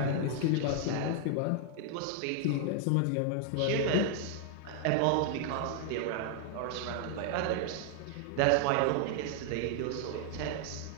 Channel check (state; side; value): different; both; correlation 0.00